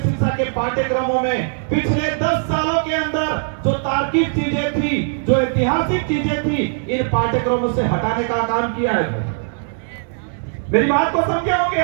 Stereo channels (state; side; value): silent; left; digital silence